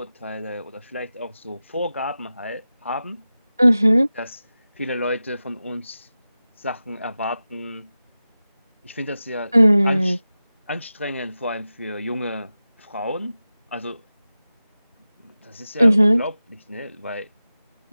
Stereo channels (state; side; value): inverted; both; correlation -0.94